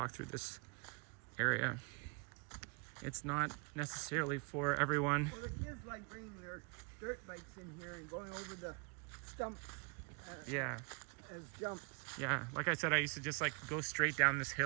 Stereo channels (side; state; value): left; quieter; 33.8 dB